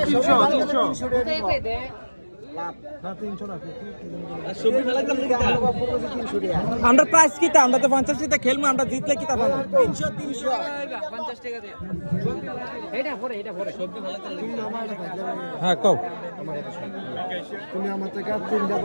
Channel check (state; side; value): inverted; both; correlation -1.00